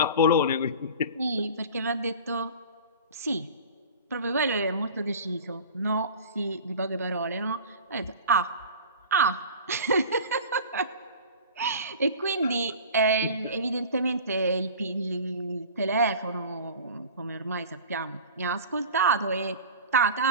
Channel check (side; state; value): both; inverted; correlation -0.38